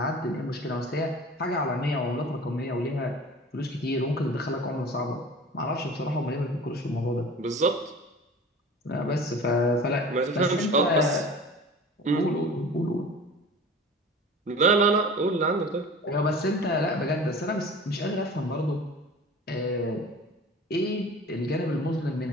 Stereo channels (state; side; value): normal; both; correlation 0.40